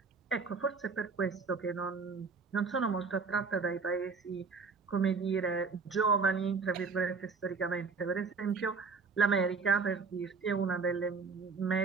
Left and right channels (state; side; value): quieter; left; 4.8 dB